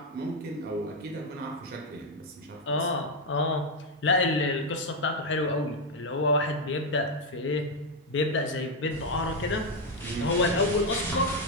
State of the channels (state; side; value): normal; both; correlation 0.03